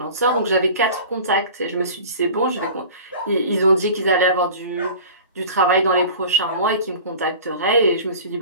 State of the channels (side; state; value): both; inverted; correlation -0.39